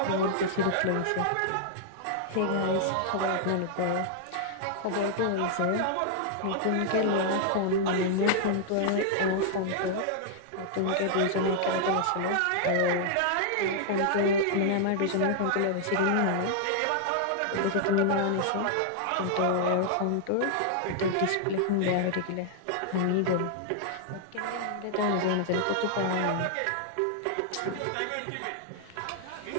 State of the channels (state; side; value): different; both; correlation -0.01